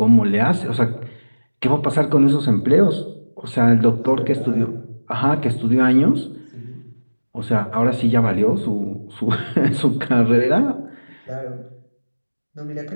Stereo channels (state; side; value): inverted; both; correlation -1.00